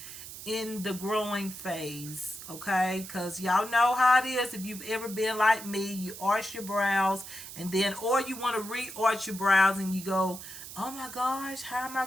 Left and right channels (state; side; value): noise; right; hiss, 12 dB below the sound